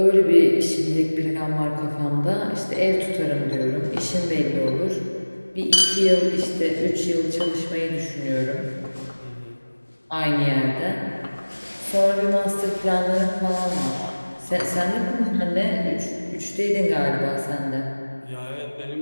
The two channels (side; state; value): both; inverted; correlation -1.00